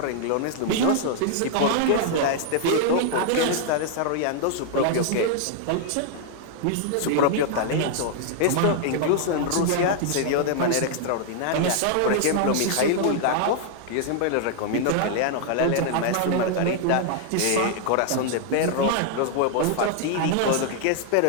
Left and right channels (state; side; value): different; both; correlation 0.00